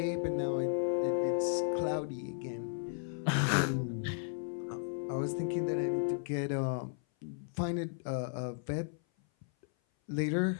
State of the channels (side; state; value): right; silent; 55 dB below the other